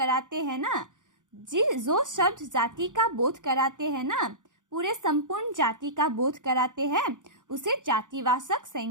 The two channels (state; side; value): late; left; 0.87 ms